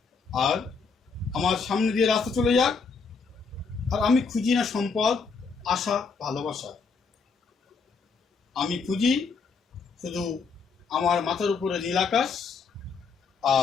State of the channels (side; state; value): right; quieter; 5.0 dB